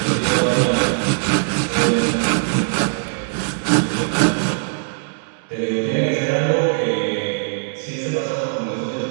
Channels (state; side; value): silent; left; 66 dB below the other